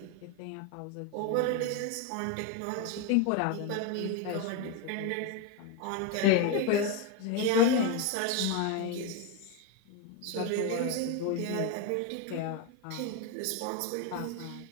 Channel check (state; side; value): different; both; correlation 0.02